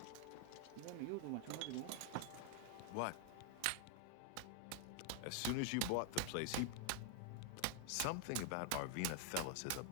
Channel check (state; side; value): different; both; correlation 0.00